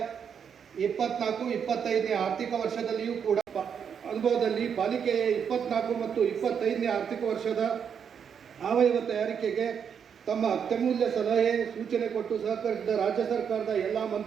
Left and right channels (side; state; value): left; quieter; 7.4 dB